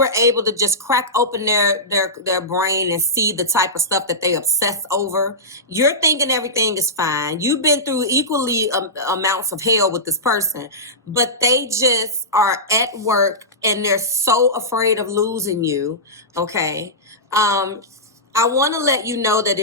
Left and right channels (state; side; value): normal; both; correlation -0.14